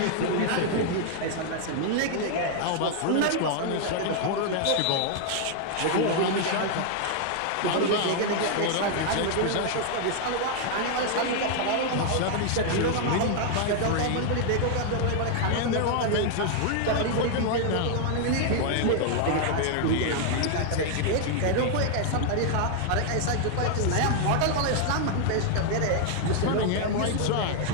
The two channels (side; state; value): both; different; correlation 0.00